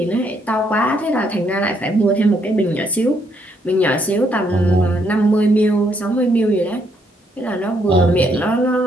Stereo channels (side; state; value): both; normal; correlation 0.73